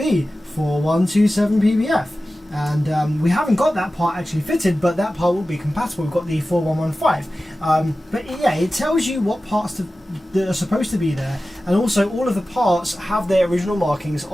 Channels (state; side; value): normal; both; correlation 0.95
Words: 4127 PBF. And we haven't got that part actually fitted, but that part will be compatible. We've got the 4115. But yeah, it tells you what parts that are supposed to be there, and also all of the parts have their original markings